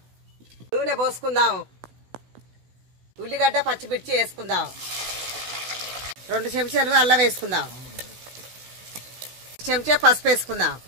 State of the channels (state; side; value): late; left; 16 ms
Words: నూనె పోసుకుందాం. ఉల్లిగడ్డ పచ్చిమిర్చి వేసుకుందాం. 2 చెంచాలు అల్లం వేసుకుందాం. చెంచా పసుపు వేసుకుందాం.